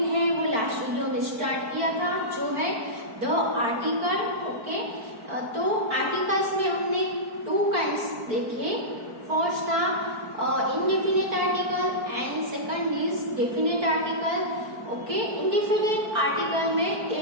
है, वो last video में start किया था, जो है द आर्टिकल. ओके, तो आर्टिकल्स में हमने टू काइंड्स देखे. फर्स्ट था indefinite article and second is definite article. Okay, indefinite article में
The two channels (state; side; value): late; left; 4.5 ms